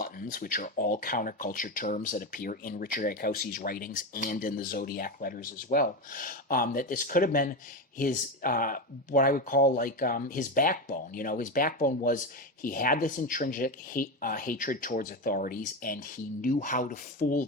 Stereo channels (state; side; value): normal; both; correlation 0.15